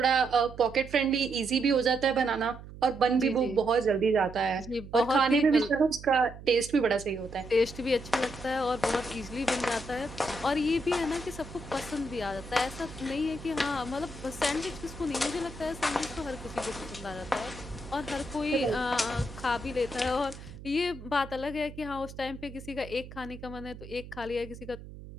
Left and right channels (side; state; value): right; noise; hum, 15 dB below the sound